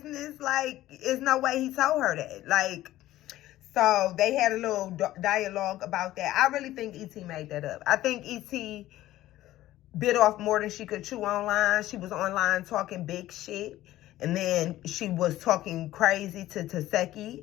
Like, there's no way he told her that. Like, so they had a little dialogue about that. I really think E.T. made that up. I think E.T. bit off more than she could chew online. She was online talking big shit, and then she was talking crazy to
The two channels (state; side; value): quieter; right; 15.0 dB